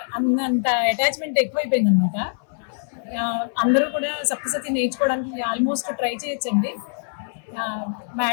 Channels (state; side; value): silent; right; 57 dB below the other